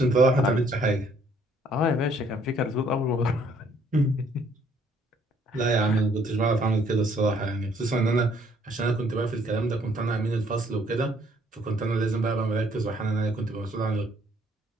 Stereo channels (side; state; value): both; normal; correlation 0.64